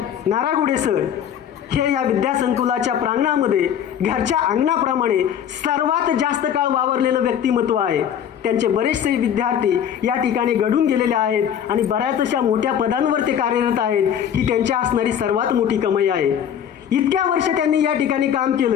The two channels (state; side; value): quieter; right; 9.1 dB